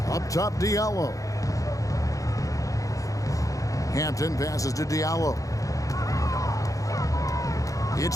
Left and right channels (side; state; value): right; late; 0.16 ms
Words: Up top, Diallo. Hampton passes to Diallo. It's